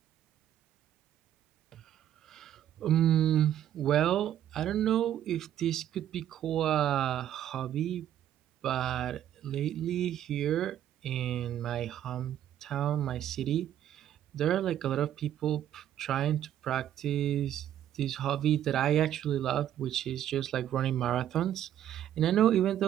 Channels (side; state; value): left; quieter; 11.2 dB